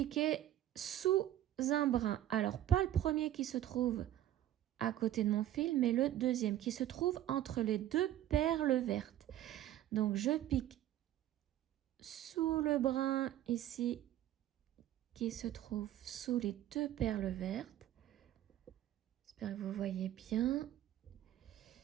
sous un brin. Alors, pas le premier qui se trouve à côté de mon fil, mais le deuxième qui se trouve entre les 2 perles vertes. Donc, je pique sous le brin ici qui se trouve sous les deux perles vertes. J'espère que vous voyez bien.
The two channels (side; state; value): left; quieter; 12.7 dB